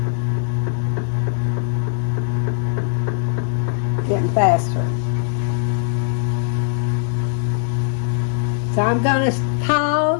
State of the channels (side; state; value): right; silent; digital silence